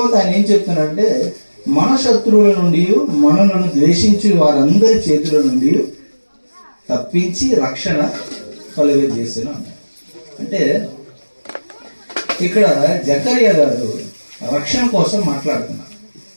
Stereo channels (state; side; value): inverted; both; correlation -1.00